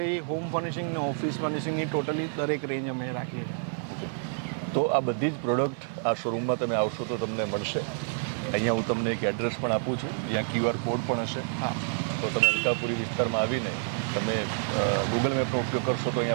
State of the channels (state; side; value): silent; left; 59 dB below the other